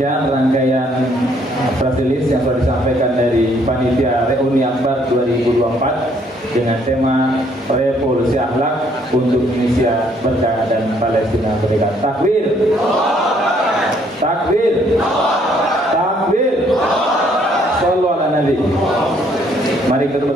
rangkaian press release yang sudah disampaikan dari Panitia Reuni Akbar 2024 dengan tema Revolusi Akhlak untuk Indonesia Berkah dan Palestina Merdeka. Takbir! Takbir! Takbir! Sallu ala Nabi. Mari kita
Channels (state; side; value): normal; both; correlation 0.66